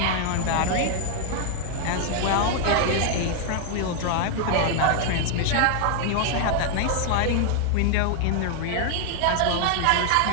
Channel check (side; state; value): both; different; correlation 0.00